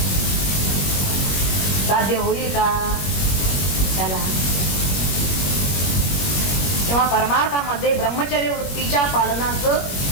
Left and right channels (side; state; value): right; late; 21 ms